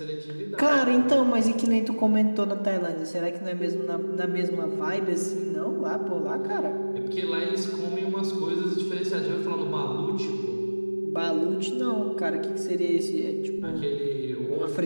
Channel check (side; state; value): both; inverted; correlation -1.00